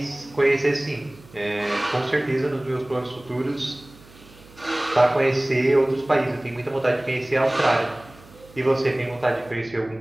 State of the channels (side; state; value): right; noise; hum, 24 dB below the sound